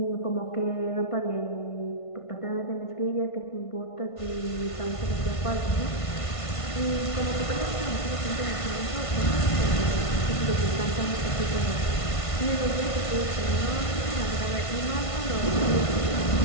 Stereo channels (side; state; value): right; late; 1.5 ms